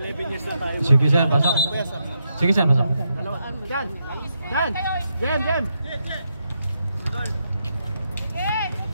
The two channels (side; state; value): both; inverted; correlation -0.82